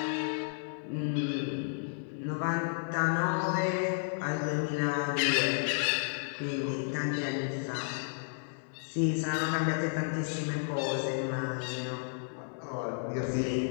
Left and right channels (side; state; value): right; silent; digital silence